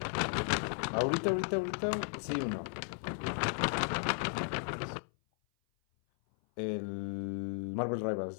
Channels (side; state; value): right; silent; 54 dB below the other